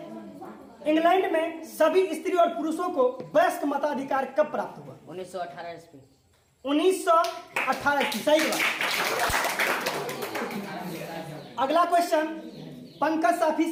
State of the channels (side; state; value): both; identical; correlation 1.00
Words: इंग्लैंड में सभी स्त्री और पुरुषों को वयस्क मताधिकार कब प्राप्त हुआ? 1918 ईस्वी। 1918 ईस्वी। सही जवाब। अगला क्वेश्चन पंकज साफी